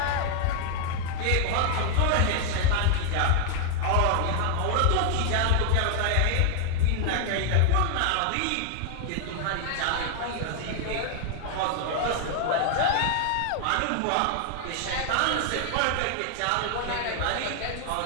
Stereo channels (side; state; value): both; different; correlation 0.00